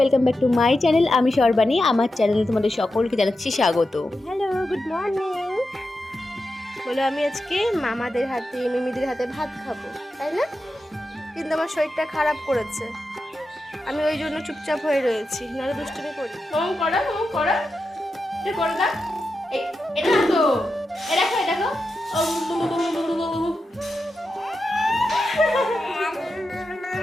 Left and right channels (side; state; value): both; normal; correlation 0.90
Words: Welcome back to my channel. আমি সর্বাণী, আমার চ্যানেলে তোমাদের সকলকে জানাচ্ছি স্বাগত। Hello, good morning. বলো, আমি আজকে মামাদের হাতে মিমিদের হাতে ভাত খাবো, তাই না? কিন্তু আমার শরীরটা খারাপ করেছে, আমি ওই জন্য চুপচাপ হয়ে রয়েছি, নাহলে দুষ্টুমি করি। এটা তো দেখো